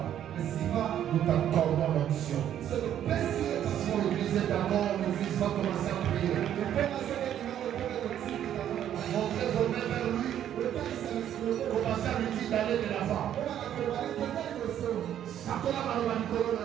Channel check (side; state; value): left; quieter; 10.6 dB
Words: nous t'accordons l'onction. Si l'église est d'accord, l'église va commencer à prier. Montrez vos mains vers lui. Commencez à lui dire d'aller de l'avant.